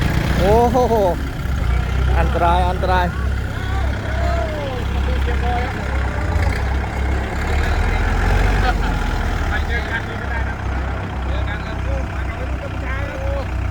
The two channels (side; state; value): both; identical; correlation 1.00